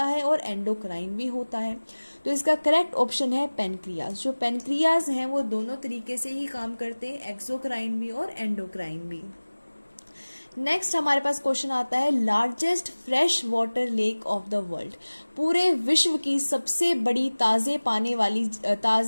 है और एंडोक्राइन भी होता है। तो इसका करेक्ट ऑप्शन है पेनक्रियाज। जो पेनक्रियाज हैं वो दोनों तरीके से ही काम करते हैं, एक्सोक्राइन भी और एंडोक्राइन भी। नेक्स्ट हमारे पास क्वेश्चन आता है, largest fresh water lake of the world, पूरे विश्व की सबसे बड़ी ताजा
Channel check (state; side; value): inverted; both; correlation -1.00